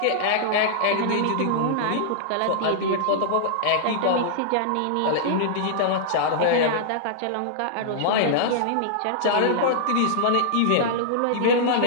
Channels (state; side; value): different; both; correlation -0.02